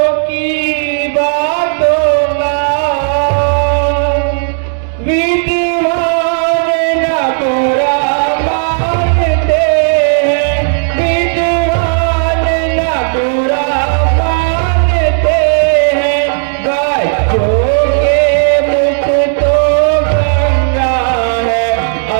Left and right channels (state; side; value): silent; left; digital silence